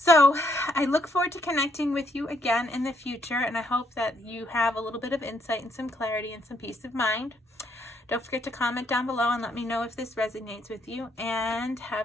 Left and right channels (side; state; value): both; normal; correlation 0.73